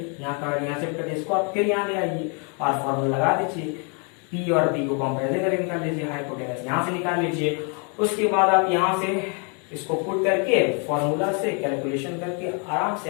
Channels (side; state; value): right; quieter; 36.7 dB